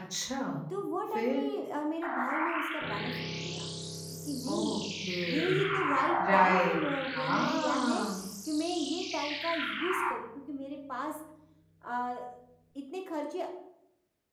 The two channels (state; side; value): identical; both; correlation 1.00